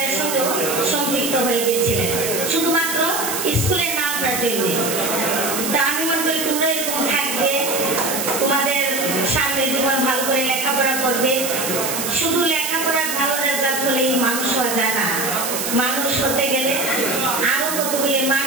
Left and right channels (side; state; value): right; noise; hiss, 3 dB below the sound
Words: সঙ্গেও সম্পৃক্ত হয়ে গিয়েছিলেন শুধুমাত্র স্কুলের নামটার জন্য। তা আমি মনে করি তোমরা এরকম থাকবে, তোমাদের সামনের জীবন ভালো করে লেখাপড়া করবে। শুধু লেখাপড়ার ভালো রেজাল্ট হলেই মানুষ হওয়া যায় না, মানুষ হতে গেলে আরো কতগুলি